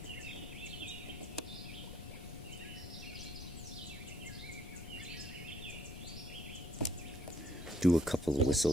Do a couple of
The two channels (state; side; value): noise; left; rumble, 12 dB below the sound